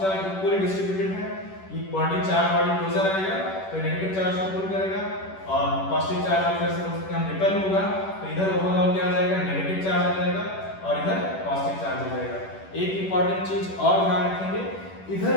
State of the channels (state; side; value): late; right; 10 ms